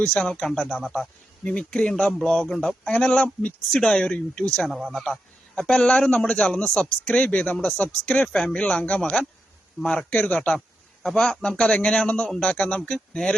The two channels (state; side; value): normal; both; correlation 0.86